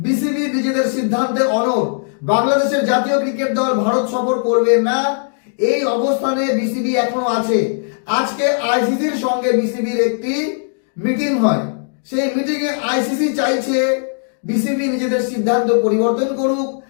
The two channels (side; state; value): right; silent; digital silence